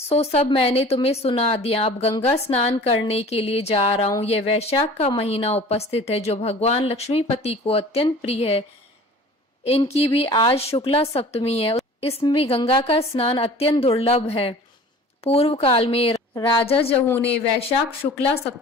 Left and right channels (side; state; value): both; normal; correlation 0.44